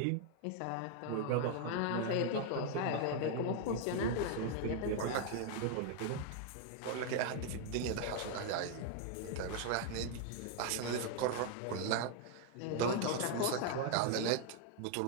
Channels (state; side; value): different; both; correlation 0.00